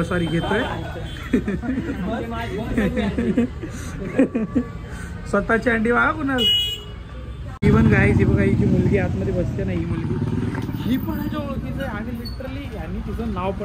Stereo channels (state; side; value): identical; both; correlation 1.00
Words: सॉरी घेतोय स्वतःची अंडी बघा कुणाल। इव्हन गाईज ही बघा, हिची मुलगी आतमध्ये बसते ना, ही मुलगी ही पण ह्याच्या ओळखीचं आहे आणि लिटरली यांनी तिचं नाव